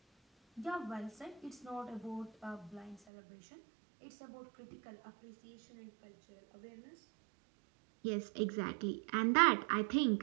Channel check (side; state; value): left; drops out; at 3.0 s